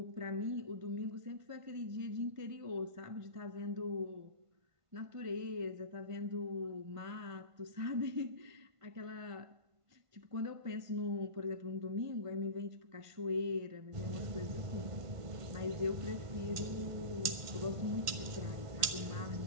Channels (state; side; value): late; left; 1.5 ms